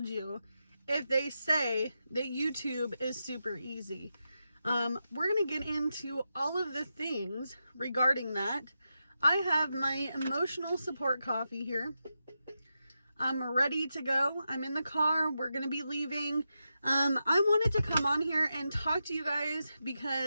you if they say that YouTube is super easy. We're going to get into all of the things regarding that. I have my emotional support coffee here. I'm ready to go. I'm in the car. We're going to be leaving. I wanted to come on here and talk to you guys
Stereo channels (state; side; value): inverted; both; correlation -0.88